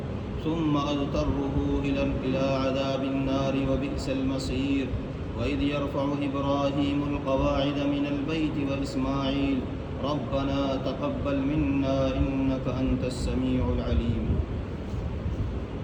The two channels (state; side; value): identical; both; correlation 1.00